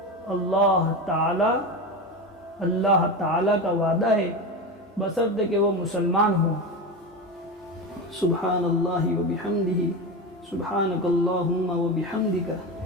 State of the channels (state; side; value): normal; both; correlation 0.21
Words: اللہ تعالی کا وعدہ ہے، بشرطے کہ وہ مسلمان ہو۔ سبحان اللہ و بحمدہ، سبحانک اللہم و بحمدک۔